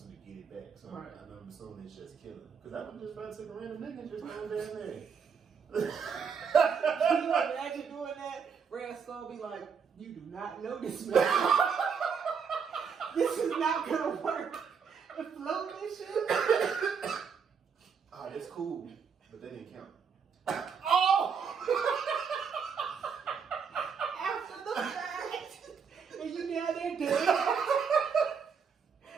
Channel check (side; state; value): left; quieter; 6.4 dB